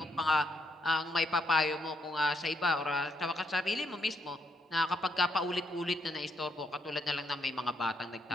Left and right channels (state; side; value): normal; both; correlation 0.76